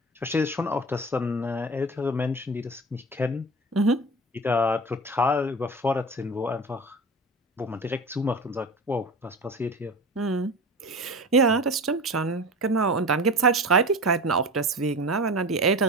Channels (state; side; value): normal; both; correlation 0.32